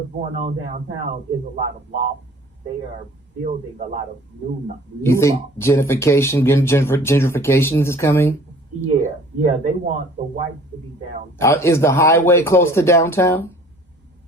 going on downtown is a lot of lofts. They are building a lot of new You think lofts. Gentrification is coming? Yeah, they want the whites to be downtown. Is the highway close to downtown?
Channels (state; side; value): normal; both; correlation 0.50